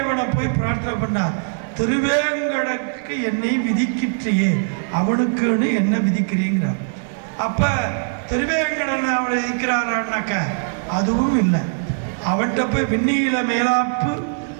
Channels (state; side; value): silent; left; 61 dB below the other